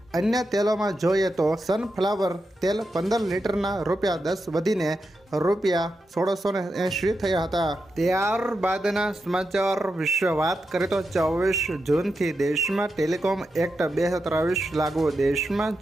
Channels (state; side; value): normal; both; correlation 0.87